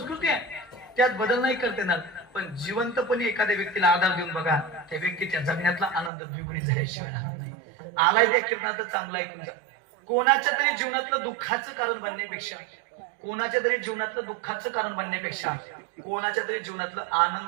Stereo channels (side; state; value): left; drops out; at 6.1 s